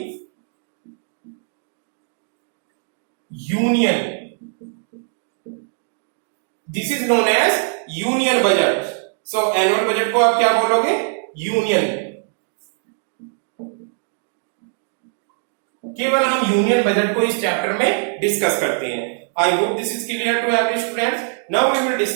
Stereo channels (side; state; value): left; silent; 65 dB below the other